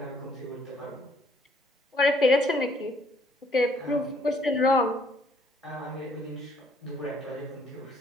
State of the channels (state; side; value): normal; both; correlation 0.65